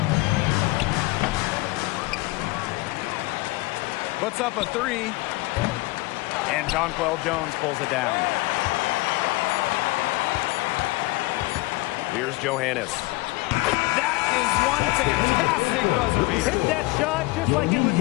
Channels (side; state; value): right; quieter; 22.0 dB